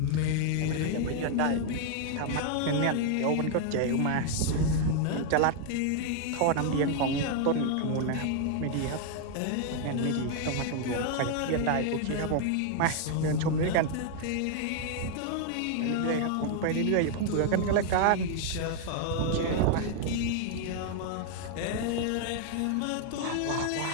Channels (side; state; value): both; different; correlation 0.00